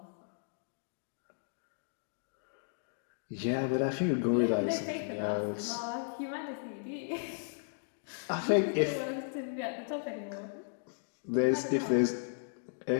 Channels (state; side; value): silent; right; digital silence